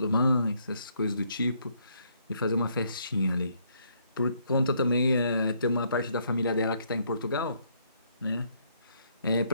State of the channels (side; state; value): both; inverted; correlation -0.70